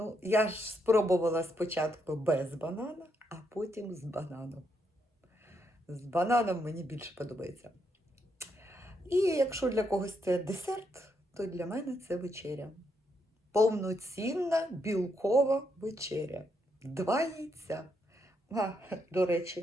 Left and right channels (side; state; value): both; normal; correlation 0.78